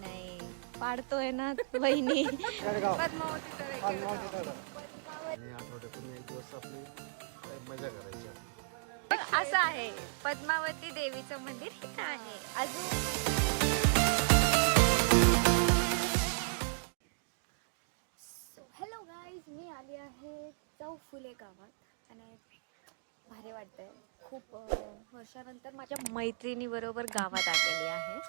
पाडतोय ना वहिनी. पद्मावती तळे केडगाव. आणि आठवड्यातून एक दिवस आपली मजा करायची. असं आहे, पद्मावती देवीचं मंदिर इथं आहे. सो हॅलो गाईज, मी आली आहे चौफुले गावात आणि भारी वाटतंय. खूप वर्षानंतर माझ्या मैत्रिणीबरोबर गावात आलेली आहे.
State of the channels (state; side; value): silent; left; digital silence